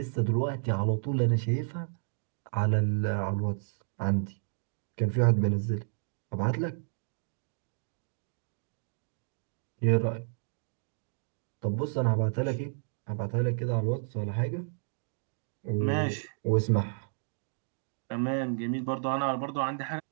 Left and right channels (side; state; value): left; silent; digital silence